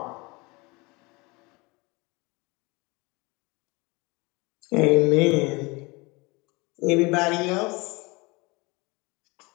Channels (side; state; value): right; quieter; 25.6 dB